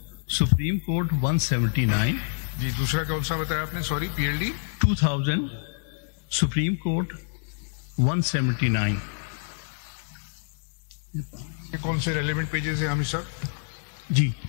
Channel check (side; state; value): right; silent; digital silence